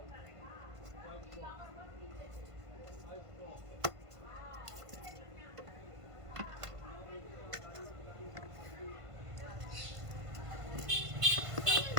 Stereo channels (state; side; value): late; left; 1.5 ms